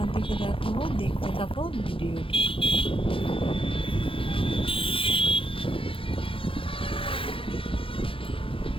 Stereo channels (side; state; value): right; late; 0.26 ms